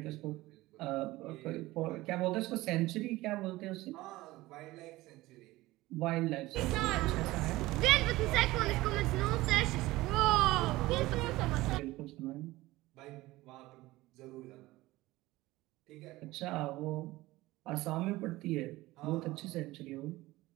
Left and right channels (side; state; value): left; quieter; 18.6 dB